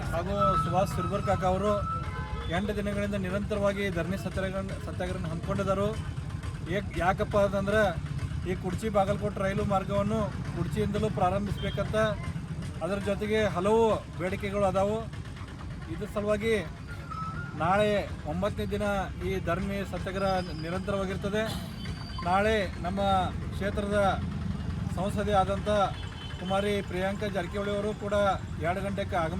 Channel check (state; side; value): identical; both; correlation 1.00